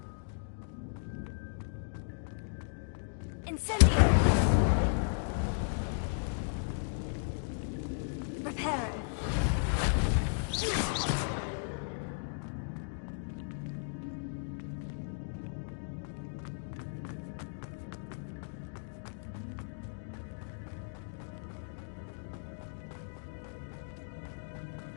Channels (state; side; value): silent; right; digital silence